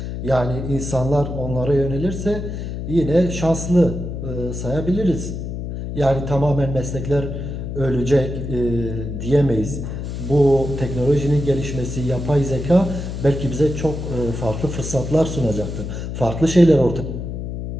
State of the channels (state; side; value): noise; left; hum, 6 dB below the sound